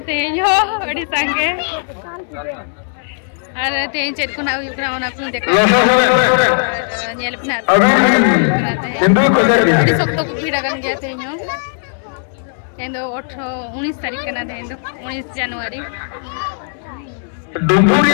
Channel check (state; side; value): silent; right; digital silence